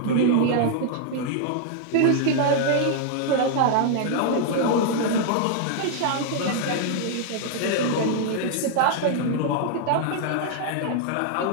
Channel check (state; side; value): different; both; correlation 0.00